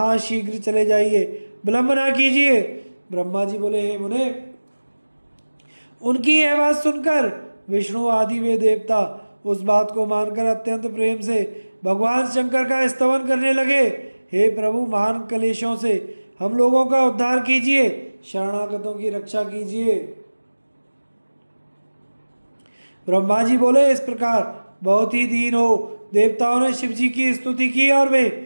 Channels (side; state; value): both; inverted; correlation -1.00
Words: शीघ्र चले जाइए, विलंब ना कीजिए। ब्रह्मा जी बोले, हे मुने, उनकी यह बात सुनकर विष्णु आदि वे देवता उस बात को मानकर अत्यंत प्रेम से भगवान शंकर का स्तवन करने लगे। हे प्रभु, महान कलेशों से हम लोगों का उद्धार कीजिए, शरणागतों की रक्षा कीजिए। ब्रह्मा जी बोले, इस प्रकार बहुत ही दीन हो देवताओं ने शिव जी की स्तुति की और वे